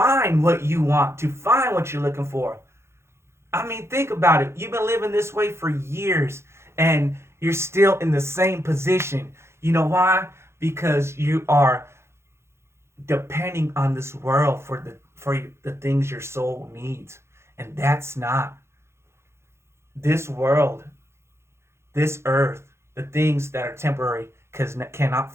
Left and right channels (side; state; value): left; late; 0.13 ms